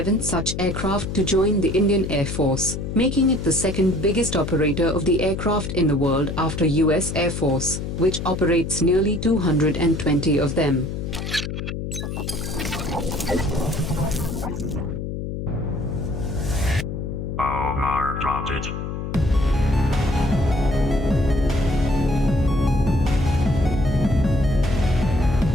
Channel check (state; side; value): noise; left; hum, 5 dB below the sound